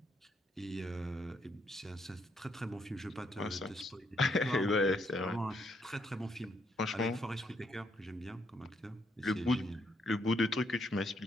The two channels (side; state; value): both; normal; correlation 0.74